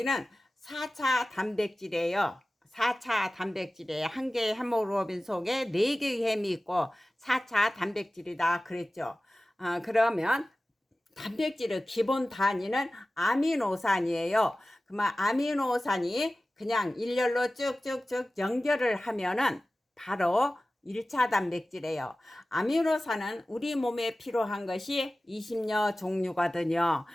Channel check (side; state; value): both; normal; correlation 0.97